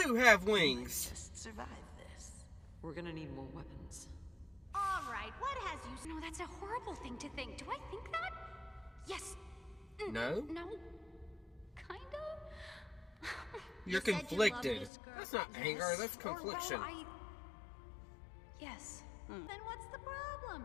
have wings. Just survive this. We're gonna need more weapons. All right, what has you... No, that's a horrible thing to think. Do I think that? Yes. No? No. Kinda? You're You said you loved conflicted. this girl. That's not Yes. anger. That's Or, well, confliction. Yes. Then what's the problem?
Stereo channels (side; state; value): right; drops out; at 14.9 s